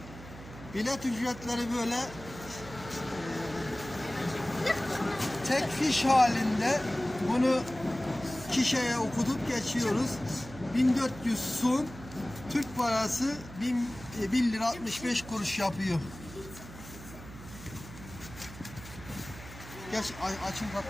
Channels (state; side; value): noise; right; hum, 15 dB below the sound